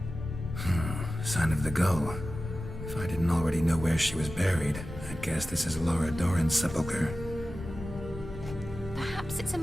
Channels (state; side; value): noise; left; rumble, 13 dB below the sound